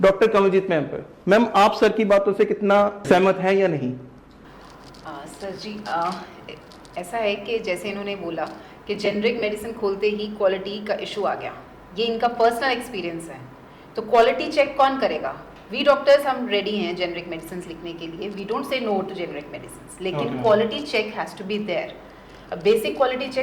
कमलजीत मैम पर। मैम, आप सर की बातों से कितना सहमत हैं या नहीं? सर जी, ऐसा है कि जैसे इन्होंने बोला कि जेनरिक मेडिसिन खोलते ही क्वालिटी का इशू आ गया, ये इनका पर्सनल एक्सपीरियंस है। तो क्वालिटी चेक कौन करेगा? वी डॉक्टर्स हम रेडी हैं जेनरिक मेडिसिन लिखने के लिए, we don't say no to generic medicine, लेकिन quality check has to be there. Basic quality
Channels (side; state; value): both; identical; correlation 1.00